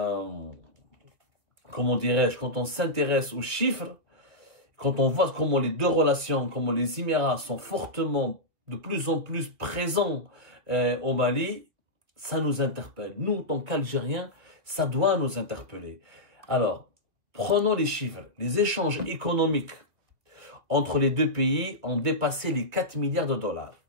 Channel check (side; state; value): left; late; 2.6 ms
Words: dirais-je, quand on s'intéresse aux chiffres, quand on voit comment les deux relations, comment les Émirats sont fortement, de plus en plus présents au Mali, ça nous interpelle. Nous, en tant qu'Algériens, ça doit nous interpeller. Alors, prenons les chiffres. Les échanges économiques entre les deux pays ont dépassé les 4 milliards de dollars.